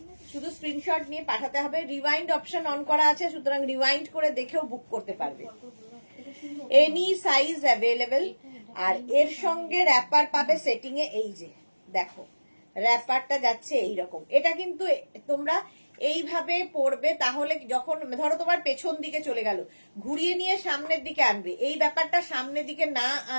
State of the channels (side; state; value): both; inverted; correlation -1.00